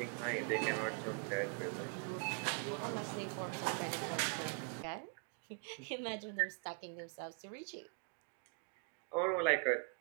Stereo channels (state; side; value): quieter; left; 37.8 dB